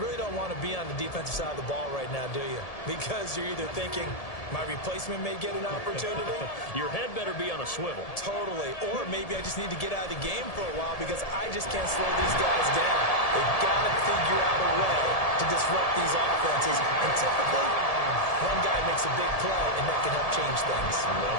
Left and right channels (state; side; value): late; right; 1.7 ms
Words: don't want to be on the defensive side of the ball right now, do you? Because you're either thinking, my replacement may get an opportunity. Your head better be on a swivel. Totally. Or maybe I just need to get out of the game for a while because I just can't slow these guys down. They've got to figure out a way to disrupt these offenses. And typically, one guy makes a big play, and that can help change things.